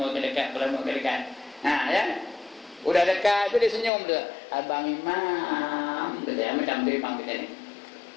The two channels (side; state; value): right; drops out; at 3.9 s